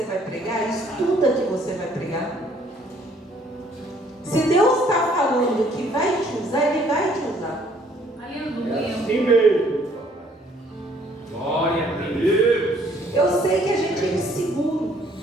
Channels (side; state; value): both; normal; correlation 0.62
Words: vai pregar, estuda que você vai pregar. Se Deus está falando que vai te usar, Ele vai te usar. Aleluia. Assim mesmo. Glória a Deus. Eu sei que a gente é inseguro.